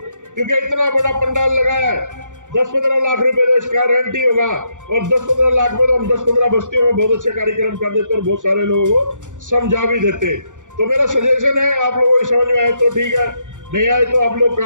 क्योंकि इतना बड़ा पंडाल लगाया है। 10-15 लाख रुपए तो इसका रेंट ही होगा, और 10-15 लाख में तो हम 10-15 बस्तियों में बहुत अच्छे कार्यक्रम कर देते और बहुत सारे लोगों को समझा भी देते। तो मेरा सजेशन है, आप लोगों को समझ में आए तो ठीक है, नहीं आए तो आप लोग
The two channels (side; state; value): left; late; 0.86 ms